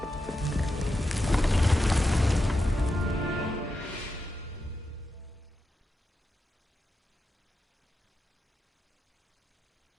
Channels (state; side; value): normal; both; correlation 0.88